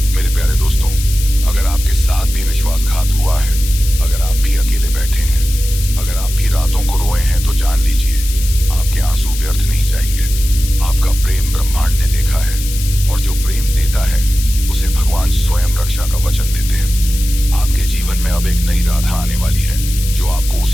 प्यारे दोस्तों, अगर आपके साथ भी विश्वासघात हुआ है, अगर आप भी अकेले बैठे हैं, अगर आप भी रातों को रोए हैं, तो जान लीजिए आपके आंसू व्यर्थ नहीं जाएंगे। आपका प्रेम ब्रह्मांड ने देखा है और जो प्रेम देता है उसे भगवान स्वयं रक्षा का वचन देते हैं। आपके जीवन में अब एक नई राधा आने वाली है जो आपको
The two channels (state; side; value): noise; left; hiss, 10 dB below the sound